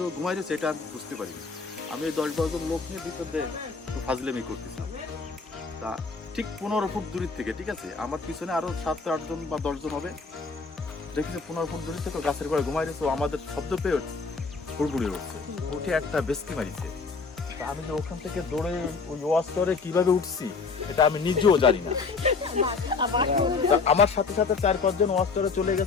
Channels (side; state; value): right; quieter; 4.6 dB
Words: ঘুমাই রয়েছে এটা আমি বুঝতে পারিনি। আমি ওই 10-12 জন লোক নিয়ে ভিতর দিয়ে ফাজলেমি করতেছিলাম। তা ঠিক 15 ফুট দূরের থেকে, ঠিক আছে, আমার পিছনে আরো 7-8 জন বা 10 জন হবে, দেখেছি 15 ফুট দূরের থেকে গাছের গোড়ায় ঘুমাই রয়েছে। আমাদের শব্দ পেয়ে হুড়গুড়িয়ে উঠছে, উঠে একটা বেস্তি মারিছে। আমি যে ওখান থেকে দৌড়ে ওই ওয়াশ করে কিভাবে উঠছি এটা আমি নিজেও জানি না। আমার সাথে সাথে 4-5 জন ওয়াশ করে চলে